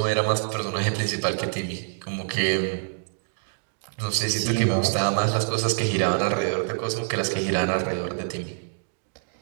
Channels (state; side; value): silent; left; digital silence